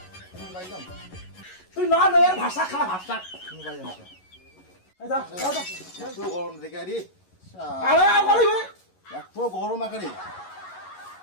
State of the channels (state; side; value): late; right; 11 ms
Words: তুমি পাইলাম তুই না এর ভাষা খা ভাষা তুমি পাইলাম এই যা যা এত গরম দেখে আরে আরে আর বলিবে এত গরম আকারে